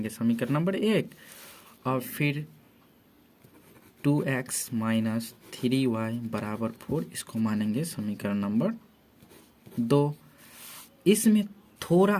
समीकरण नंबर 1। और फिर 2x - 3y बराबर 4, इसको मानेंगे समीकरण नंबर 2। इसमें थोड़ा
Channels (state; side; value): identical; both; correlation 1.00